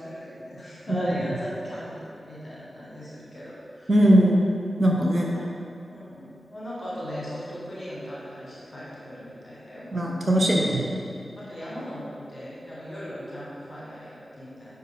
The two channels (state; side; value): normal; both; correlation 0.89